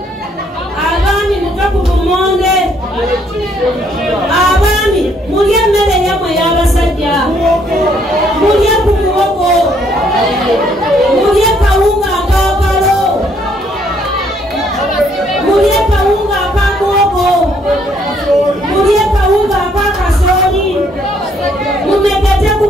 abaami muve ku bumonde abaami mulya emmere yammwe y'abasajja mulya ku muwogo mulya kawunga akakalo mulya kawunga akamuwogo mulya kawunga akakasooli mumegete ku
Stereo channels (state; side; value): normal; both; correlation 0.68